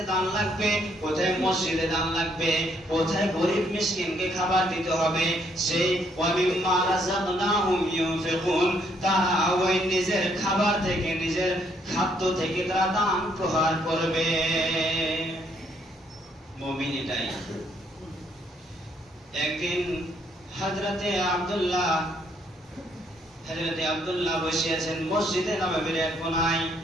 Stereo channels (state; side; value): normal; both; correlation 0.70